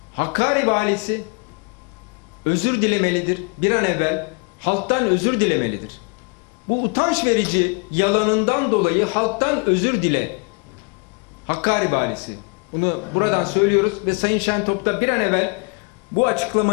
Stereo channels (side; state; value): right; quieter; 34.4 dB